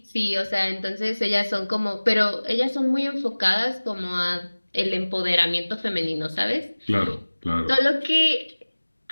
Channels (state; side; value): inverted; both; correlation -1.00